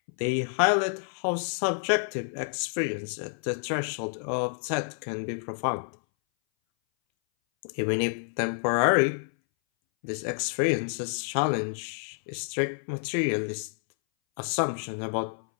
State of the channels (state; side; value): silent; right; 59 dB below the other